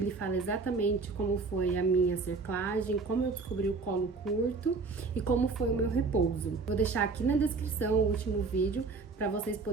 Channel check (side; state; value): left; quieter; 4.2 dB